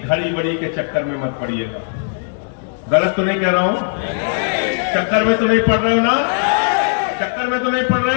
बड़ी के चक्कर में मत पड़िएगा। गलत तो नहीं कह रहा हूं? चक्कर में तो नहीं पड़ रहे हो ना? चक्कर में तो नहीं पड़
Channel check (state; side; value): silent; right; digital silence